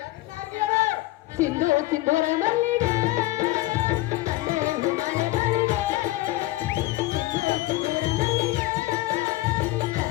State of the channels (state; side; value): quieter; right; 18.2 dB